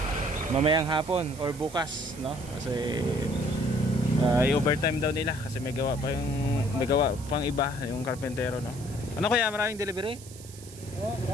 Mamayang hapon or bukas, no. Kasi i-overtime daw nila kasi may gawa pang iba yung karpentero, no. Ano kaya, maraming delivery?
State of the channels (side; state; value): right; noise; hiss, 18 dB below the sound